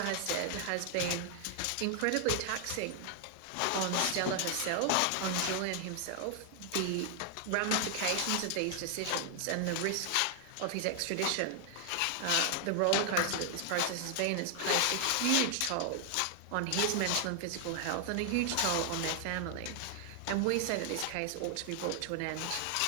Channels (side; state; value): both; different; correlation 0.00